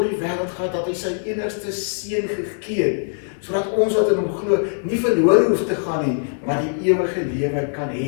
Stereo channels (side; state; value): right; silent; digital silence